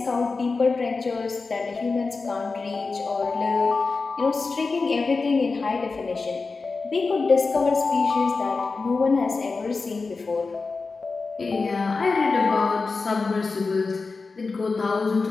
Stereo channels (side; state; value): right; quieter; 4.1 dB